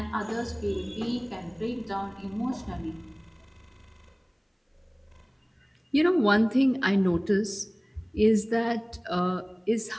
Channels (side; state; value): both; identical; correlation 1.00